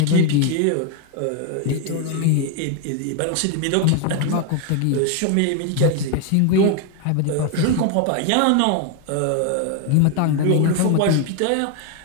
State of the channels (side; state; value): both; different; correlation 0.01